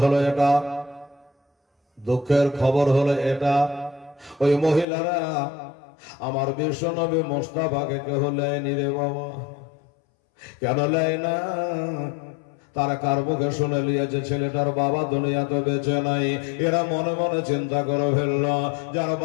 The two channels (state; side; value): drops out; right; at 4.9 s